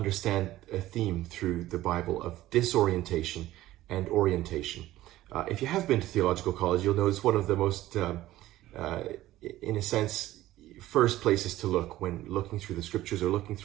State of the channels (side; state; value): left; quieter; 15.4 dB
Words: a theme through the Bible of disorientation and orientation. If you have been to theological college, you'll notice one of the most, in a sense, first places to look when looking through the scriptures or looking